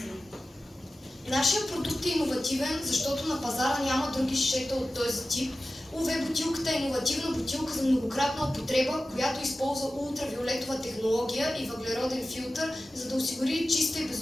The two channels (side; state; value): both; normal; correlation 0.95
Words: Нашия продукт е иновативен, защото на пазара няма други шишета от този тип. УВ бутилката е иновативна бутилка за многократна употреба, която използва ултравиолетова технология и въглероден филтър, за да осигури чиста и